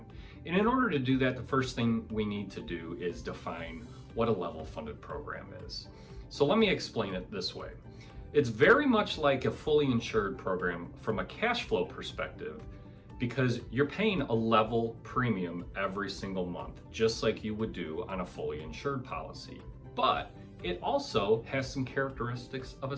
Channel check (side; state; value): both; identical; correlation 1.00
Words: And in order to do that, the first thing we need to do is define what a level funded program is. So let me explain it this way. It's very much like a fully insured program from a cash flow perspective, because you're paying a level premium every single month, just like you would do on a fully insured policy. But it also has some characteristics of a